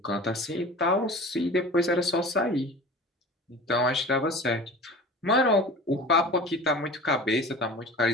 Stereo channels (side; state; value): both; normal; correlation 0.38